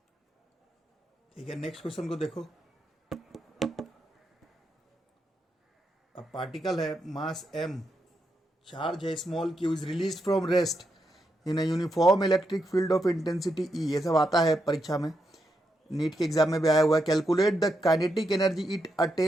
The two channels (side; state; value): both; normal; correlation 0.83